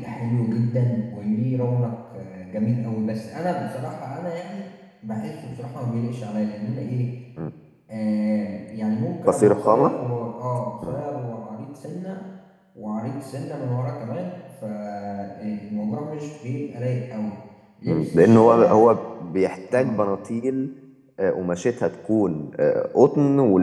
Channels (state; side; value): identical; both; correlation 1.00